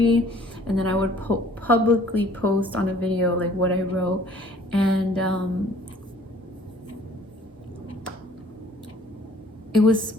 and then I would publicly post on a video like what I wrote. And it was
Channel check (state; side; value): normal; both; correlation 0.55